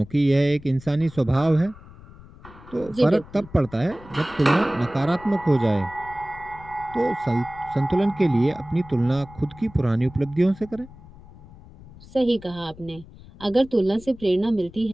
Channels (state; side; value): noise; left; rumble, 20 dB below the sound